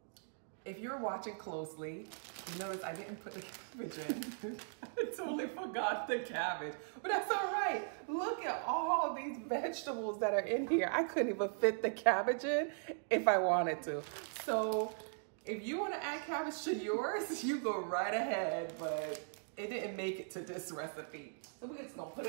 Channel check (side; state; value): left; silent; digital silence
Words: if you're watching closely, you notice I didn't put the cabbage in. I totally forgot the cabbage, but that's all right. Look at all these vegetables that are in here. I couldn't even fit the cabbage in if I wanted to. So if you want to add cabbage to yours, you go right ahead, but it didn't make it to this recipe. So we're just gonna put